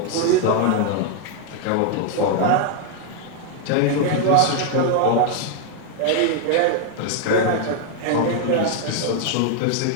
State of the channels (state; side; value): different; both; correlation 0.00